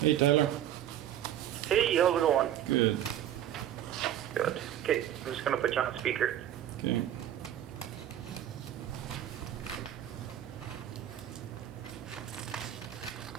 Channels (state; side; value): quieter; left; 11.3 dB